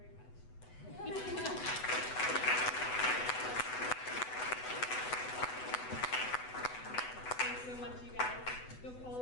much. Thanks so much, you guys. Go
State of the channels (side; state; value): right; late; 8.0 ms